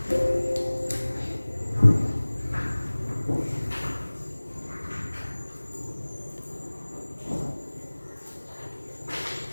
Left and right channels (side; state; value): both; inverted; correlation -1.00